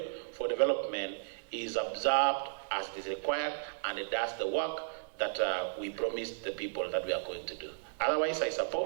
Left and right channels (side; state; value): left; silent; digital silence